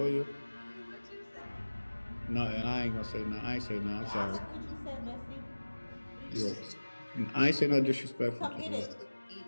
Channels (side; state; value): both; inverted; correlation -1.00